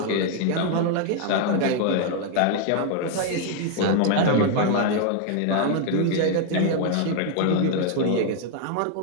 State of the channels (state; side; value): different; both; correlation 0.00